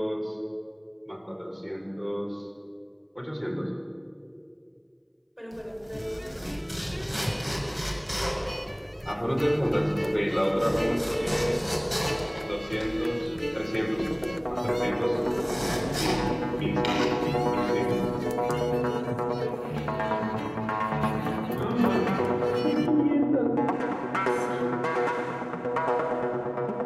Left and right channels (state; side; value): identical; both; correlation 1.00